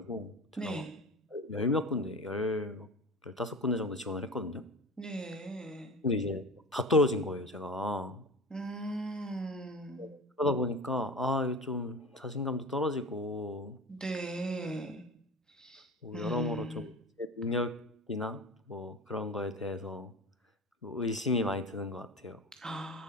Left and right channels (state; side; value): normal; both; correlation 0.33